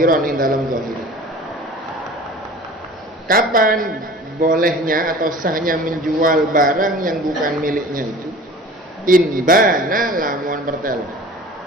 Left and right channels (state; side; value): normal; both; correlation 0.42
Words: ing dalam zahir. Kapan bolehnya atau sahnya menjual barang yang bukan miliknya itu? Inbana lamun pertelo.